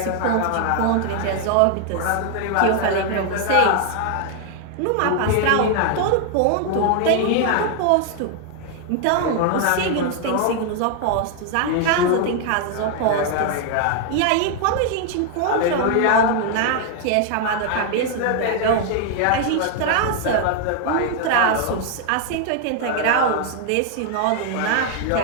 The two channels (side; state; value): both; different; correlation 0.00